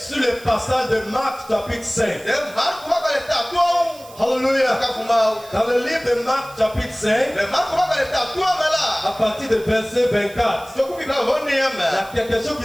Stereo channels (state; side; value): noise; right; hiss, 21 dB below the sound